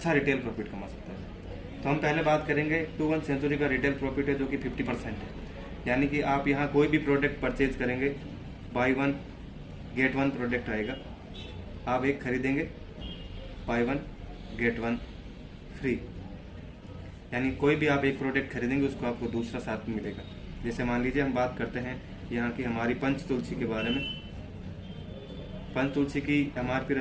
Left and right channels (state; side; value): identical; both; correlation 1.00